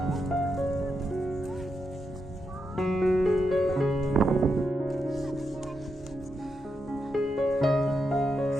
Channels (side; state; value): both; normal; correlation 0.84